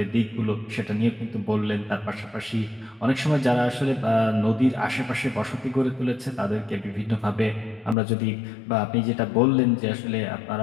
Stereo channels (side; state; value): right; drops out; at 8.0 s